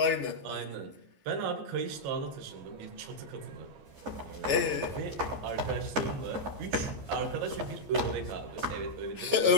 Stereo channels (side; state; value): left; late; 15 ms